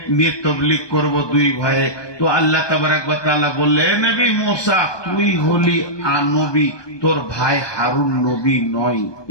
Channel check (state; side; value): late; right; 1.2 ms